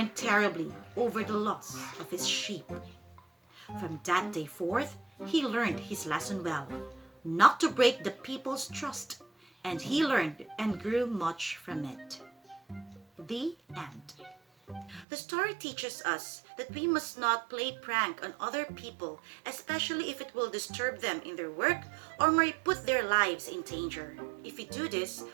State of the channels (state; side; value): drops out; left; at 15.1 s